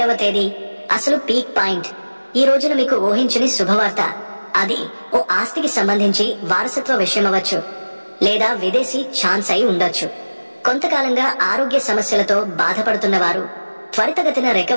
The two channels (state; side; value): inverted; both; correlation -1.00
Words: తేదీ అసలు పీక్ పాయింట్. ఈ రోజున మీకు ఊహించని శుభవార్త. అది ఓ ఆస్తికి సంబంధించి వారసత్వ విషయమవచ్చు, లేదా విదేశీ ఛాన్స్ అయి ఉండొచ్చు. కొంతకాలంగా ఆరోగ్య సమస్యలతో బాధపడుతున్న వారు త్వరితగతిన